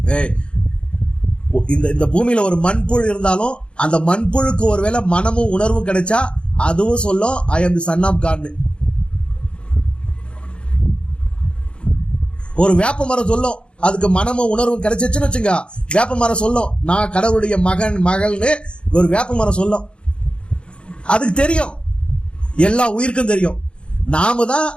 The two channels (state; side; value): late; right; 0.056 ms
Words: இந்த பூமியில ஒரு மண்புழு இருந்தாலும் அந்த மண்புழுக்கு ஒருவேளை மனமும் உணர்வும் கிடைச்சா அதுவும் சொல்லும் ஐ அம் தி சன் ஆஃப் காட். ஒரு வேப்ப மரம் சொல்லும், அதுக்கு மனமும் உணர்வும் கிடைச்சிச்சுன்னு வச்சுங்க, வேப்ப மரம் சொல்லும் நான் கடவுளுடைய மகள்னு. ஒரு வேப்ப மரம் சொல்லும், அதுக்கு தெரியும், எல்லா உயிருக்கும் தெரியும். நாம தான்